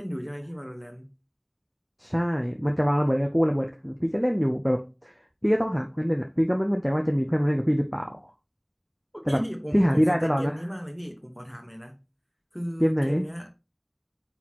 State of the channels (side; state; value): both; identical; correlation 1.00